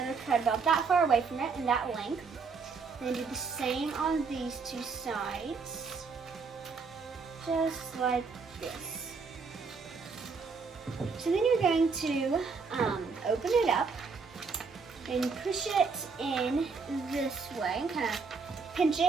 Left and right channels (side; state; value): left; quieter; 4.9 dB